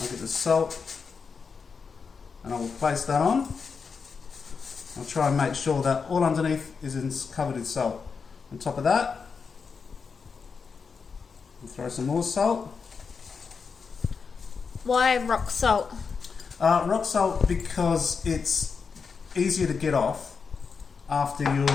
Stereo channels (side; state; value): right; quieter; 5.5 dB